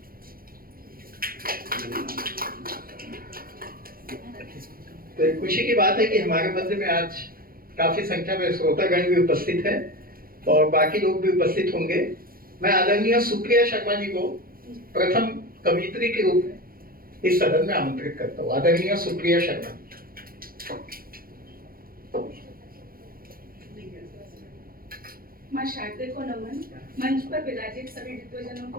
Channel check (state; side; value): late; left; 0.42 ms